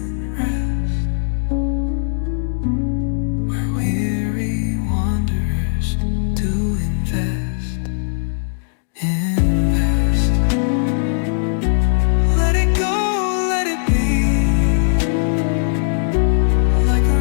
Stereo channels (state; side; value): silent; right; digital silence